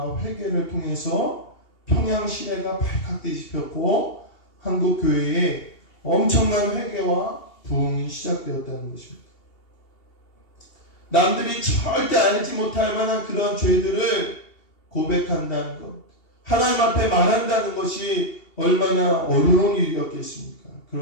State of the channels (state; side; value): late; right; 2.8 ms